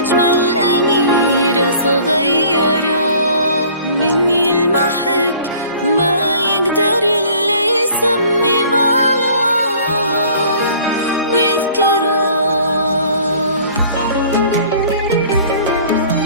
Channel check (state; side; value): inverted; both; correlation -0.51